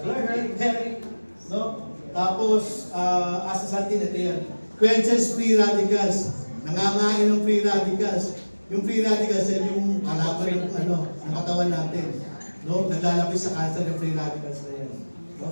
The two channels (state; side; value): inverted; both; correlation -1.00